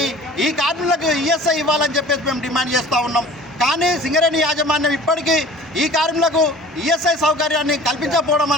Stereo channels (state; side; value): normal; both; correlation 0.45